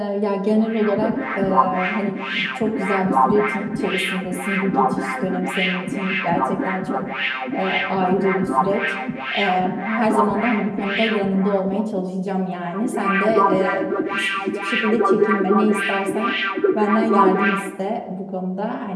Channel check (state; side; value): identical; both; correlation 1.00